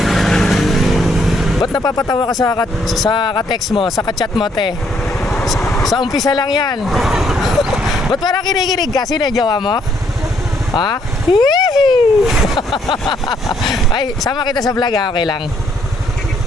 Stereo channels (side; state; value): both; normal; correlation 0.69